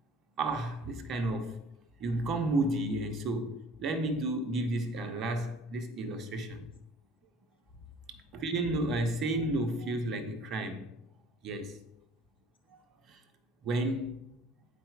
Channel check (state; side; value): normal; both; correlation 0.53